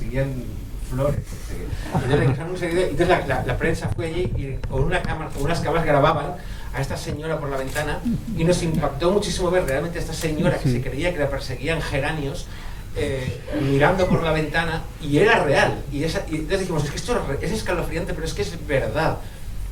flores. Entonces la prensa fue allí y con unas cámaras grababan a esta señora por la ventana y nos impactó muchísimo ver realmente a esta señora que se creía que la perseguían geranios mirando por la ventana, y era real. Y entonces dijimos, es que esto es escalofriante, pero es que es verdad.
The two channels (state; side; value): identical; both; correlation 1.00